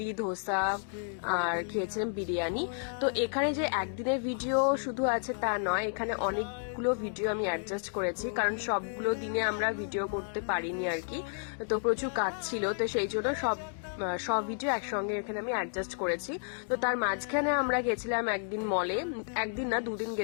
ধোসা আর খেয়েছিলাম বিরিয়ানি। তো এখানে যে একদিনের ভিডিও শুধু আছে তা নয়, এখানে অনেকগুলো ভিডিও আমি অ্যাডজাস্ট করেছি, কারণ সবগুলো দিনে আমরা ভিডিও করতে পারিনি আর কি। তো প্রচুর কাজ ছিল, তো সেই জন্য সব ভিডিও একসঙ্গে এখানে আমি অ্যাডজাস্ট করেছি। তো তার মাঝখানে আমরা গেছিলাম একদিন মলে, একদিন না দুদিন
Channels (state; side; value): silent; right; digital silence